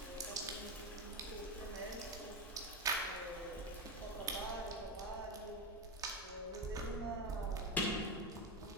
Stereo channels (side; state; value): both; normal; correlation 0.14